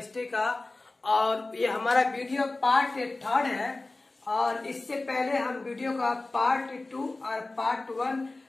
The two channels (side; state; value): right; quieter; 3.1 dB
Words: का, और ये हमारा वीडियो पार्ट 3 है। और इससे पहले हम वीडियो का पार्ट 2 और पार्ट 1